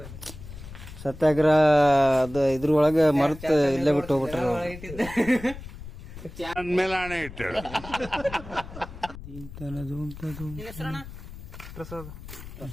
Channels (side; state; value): left; noise; rumble, 14 dB below the sound